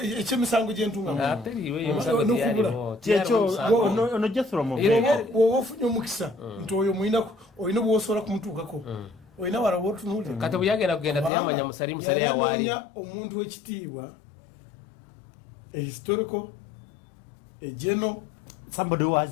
ekyemisango gyentungaono gyeoba ofunye omukisa nti oyo olina bwosobola kumutuukako olina walaba otunuuliyali omuntu w'ekitiibwa historical general somebody who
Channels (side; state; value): right; drops out; at 11.3 s